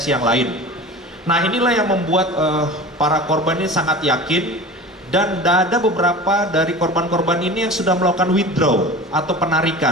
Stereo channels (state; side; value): normal; both; correlation 0.35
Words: yang lain. Nah, inilah yang membuat para korban ini sangat yakin, dan ada beberapa dari korban-korban ini yang sudah melakukan withdraw atau